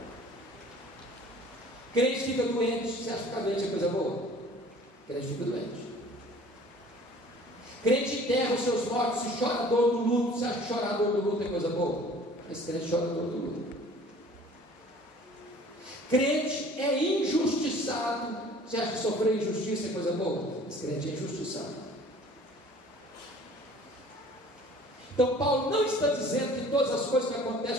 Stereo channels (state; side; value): normal; both; correlation 0.50